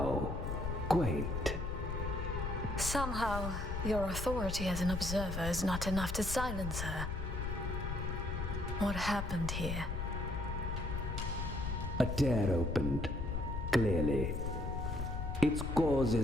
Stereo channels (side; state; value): left; noise; rumble, 3 dB below the sound